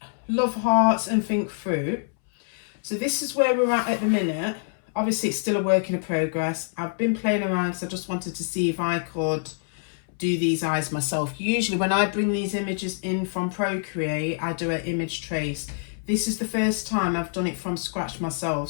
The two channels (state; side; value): silent; right; 61 dB below the other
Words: love hearts and think fruit? So this is where we're at the minute. Obviously it's still a work in progress. I've been playing around because I just wanted to see if I could do these eyes myself. Usually when I bring these images in from Procreate, I do an image trace. This is the first time I've done it from scratch myself,